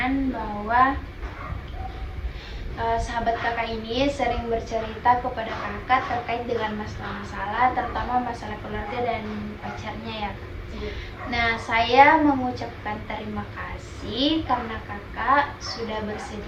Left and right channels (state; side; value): identical; both; correlation 1.00